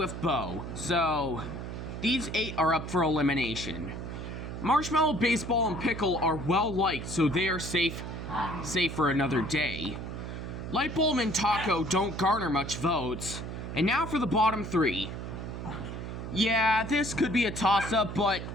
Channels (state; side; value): noise; right; hum, 7 dB below the sound